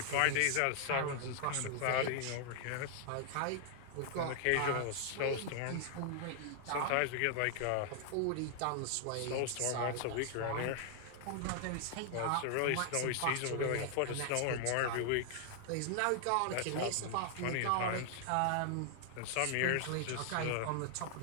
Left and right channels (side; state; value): both; different; correlation 0.00